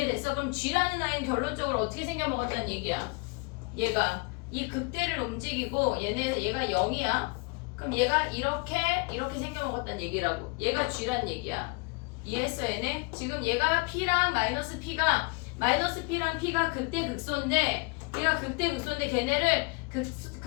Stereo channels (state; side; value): quieter; right; 29.7 dB